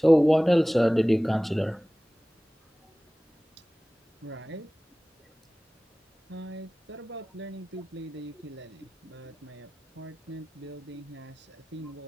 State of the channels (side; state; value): both; normal; correlation 0.98